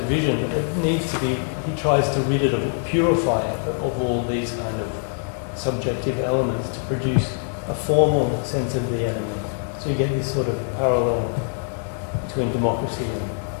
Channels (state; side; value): silent; right; 60 dB below the other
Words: it needs to be, he tries to rid it of, purify it of all these kind of subjective elements to produce a formal sense of the enemy. So you get this sort of parallel between democracy and